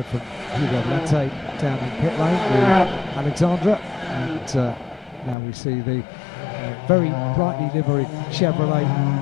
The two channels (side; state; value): right; drops out; at 5.4 s